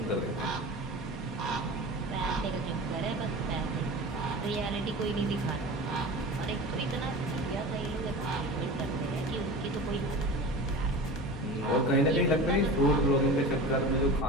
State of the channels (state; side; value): normal; both; correlation 0.33